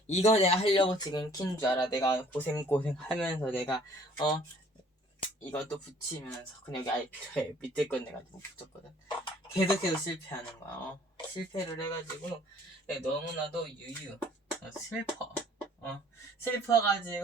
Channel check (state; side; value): normal; both; correlation 0.56